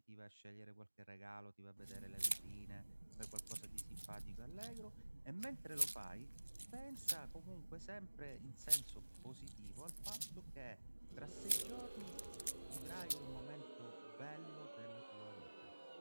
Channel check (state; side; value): inverted; both; correlation -1.00